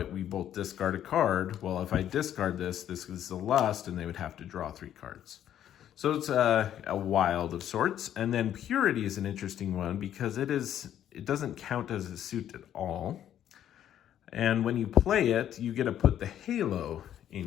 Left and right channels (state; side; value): quieter; right; 10.7 dB